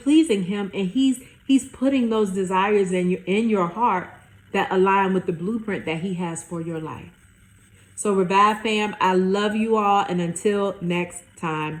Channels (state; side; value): identical; both; correlation 1.00